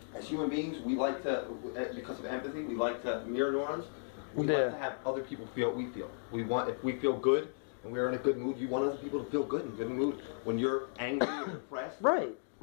human beings, we like to, because of empathy, we like to mirror neurons. We like to have other people feel what we feel. If we feel good and we're in a good mood, you want other people to feel good and good in mood. When you're angry or depressed, right.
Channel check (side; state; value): right; silent; digital silence